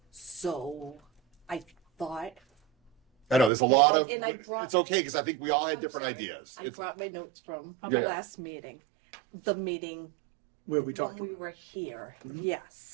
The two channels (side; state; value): left; drops out; at 3.5 s